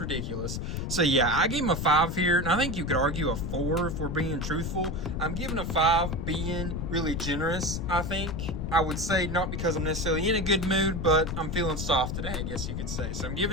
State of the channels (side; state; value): left; noise; rumble, 3 dB below the sound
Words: So yeah, I gave him a 5 here, and I think you could argue a 4 if we're being truthful. I'm giving a 5 being really generous, I think. I would say not because I'm necessarily in a good mood, but I'm feeling soft today, I guess you could say. So I'm